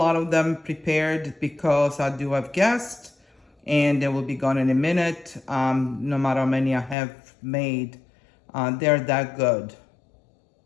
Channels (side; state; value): right; drops out; at 7.0 s